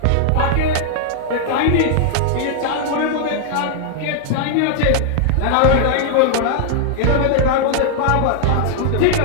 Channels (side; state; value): both; different; correlation -0.01